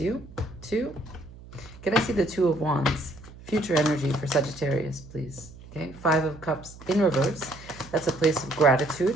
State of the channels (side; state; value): right; noise; hum, 18 dB below the sound